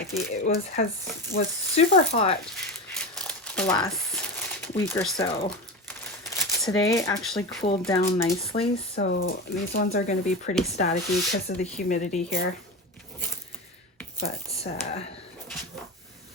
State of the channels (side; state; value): both; normal; correlation 0.23